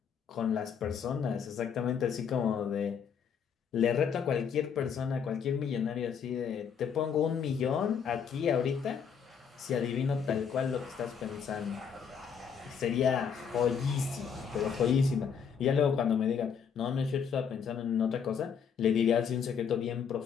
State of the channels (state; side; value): quieter; right; 7.1 dB